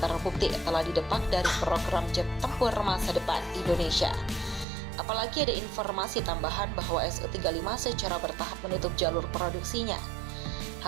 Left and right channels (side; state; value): left; drops out; at 4.7 s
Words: terbukti telah didepak dari program jet tempur masa depan Indonesia. Apalagi ada informasi tambahan bahwa Su-35 secara bertahap menutup jalur produksinya.